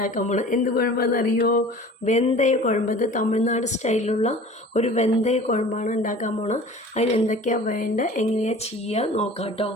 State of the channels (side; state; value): both; normal; correlation 0.43